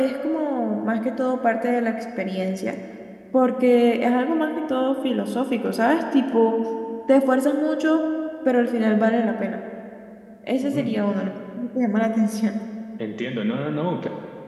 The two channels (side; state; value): both; identical; correlation 1.00